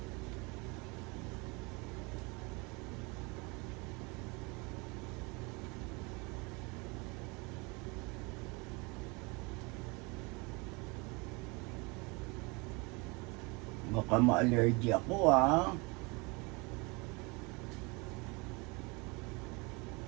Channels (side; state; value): left; quieter; 27.9 dB